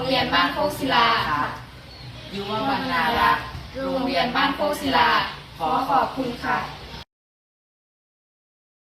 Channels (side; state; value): both; identical; correlation 1.00